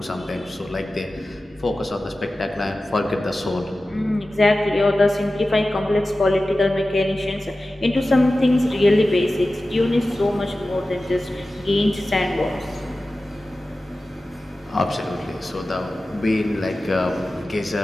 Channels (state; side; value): normal; both; correlation 0.95